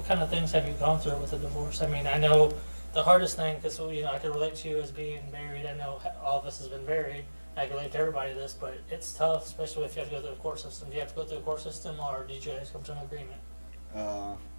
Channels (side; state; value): both; inverted; correlation -1.00